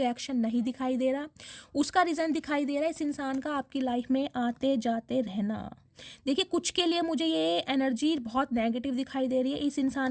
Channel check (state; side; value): identical; both; correlation 1.00